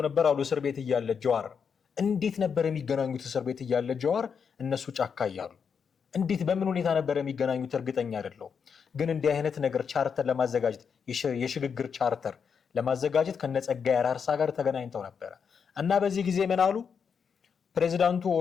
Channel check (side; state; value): right; quieter; 6.5 dB